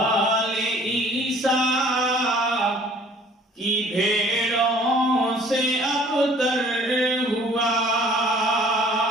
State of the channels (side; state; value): both; normal; correlation 0.54